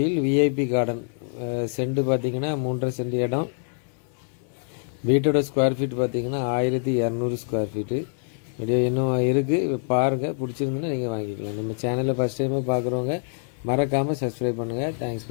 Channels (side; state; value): right; silent; 59 dB below the other